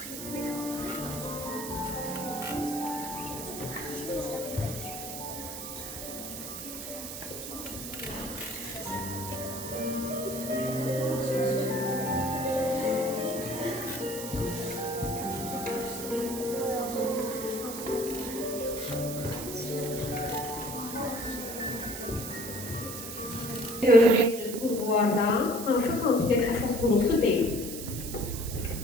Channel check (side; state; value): right; noise; hiss, 8 dB below the sound